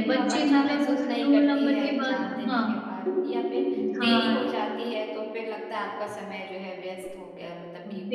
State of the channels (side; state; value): both; identical; correlation 1.00